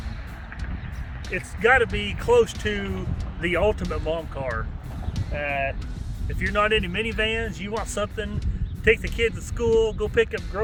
it's got to be close to the ultimate mom car. If you're not into minivans, you want something, take the kids to school, go pick up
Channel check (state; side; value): identical; both; correlation 1.00